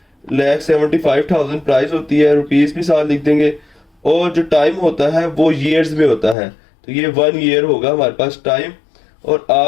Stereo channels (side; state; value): right; drops out; at 6.4 s